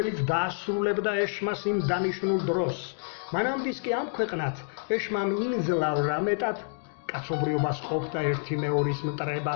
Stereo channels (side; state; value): right; silent; digital silence